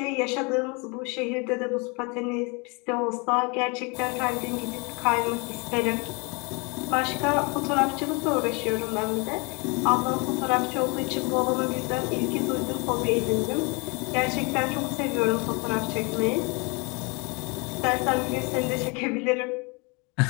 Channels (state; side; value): quieter; right; 30.4 dB